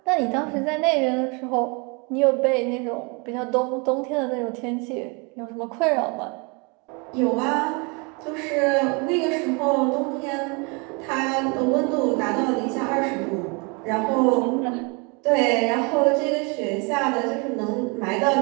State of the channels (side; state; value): left; quieter; 31.4 dB